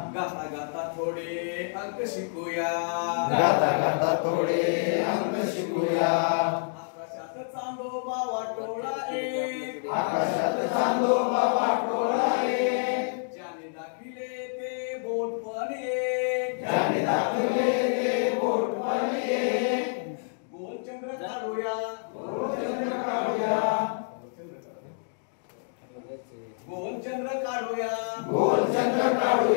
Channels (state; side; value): silent; right; digital silence